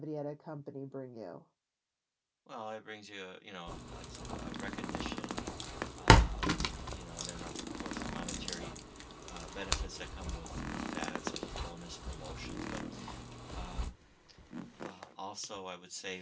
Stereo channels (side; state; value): both; identical; correlation 1.00